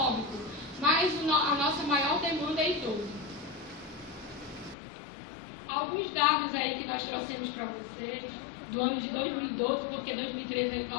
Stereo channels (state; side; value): drops out; right; at 4.8 s